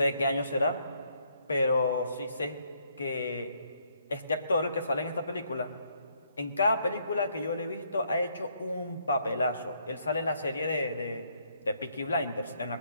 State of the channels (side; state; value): both; inverted; correlation -0.71